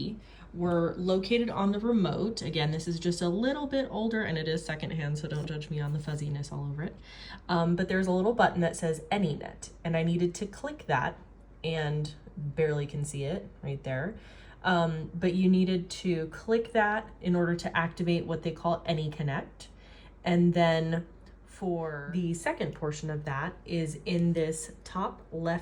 were located on the remote. Again, this is just a little bit older and it is secondhand, so don't judge me on the fuzziness all over it. But there's a little button that says AnyNet, and I needed to click that, and barely can see it right there. But you needed to click that in order to activate what they call AnyConnect. And then for the second portion of that is in this top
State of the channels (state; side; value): identical; both; correlation 1.00